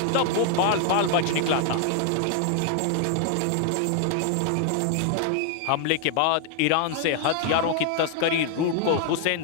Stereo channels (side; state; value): both; different; correlation 0.00